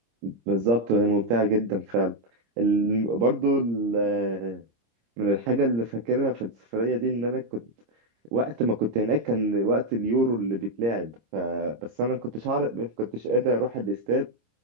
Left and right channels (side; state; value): left; late; 26 ms